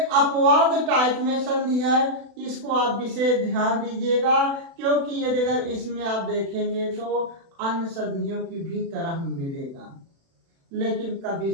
अपवाद टाइप में संधि है। इसको आप विशेष ध्यान दीजिएगा, क्योंकि यदि अगर इसमें आप देखेंगे तो अन्य संधियों की भी तरह मिलेगा, लेकिन कभी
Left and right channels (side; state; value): left; late; 36 ms